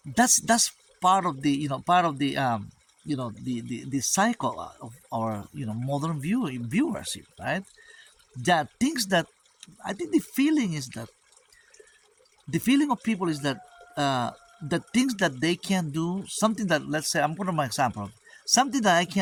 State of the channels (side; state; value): both; identical; correlation 1.00